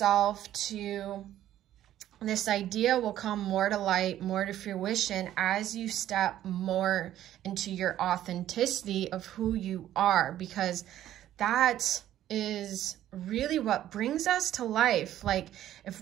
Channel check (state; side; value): quieter; left; 12.4 dB